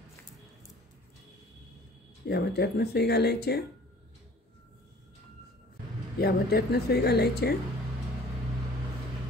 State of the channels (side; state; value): both; normal; correlation 0.51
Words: या मोत्यातनं सुई घालायची. या मोत्यातनं सुई घालायची